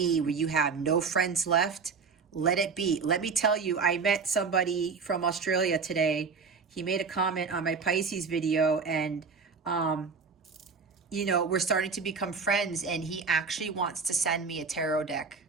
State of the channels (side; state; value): left; quieter; 5.1 dB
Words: where you have no friends left, let it be. Let me tell you, I met somebody from Australia today. He made a comment on my Pisces video, and you know, we're starting to become friends, and he actually wants to send me a tarot deck